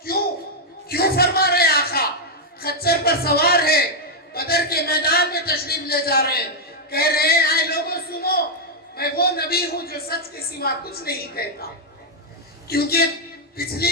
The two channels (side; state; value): both; normal; correlation -0.02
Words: کیوں فرما رہے آقا؟ خچر پر سوار ہے، بدر کے میدان میں تشریف لے جا رہے ہیں، کہہ رہے ہیں اے لوگوں سنو، میں وہ نبی ہوں جو سچ کے سوا کچھ نہیں کہتا. کیونکہ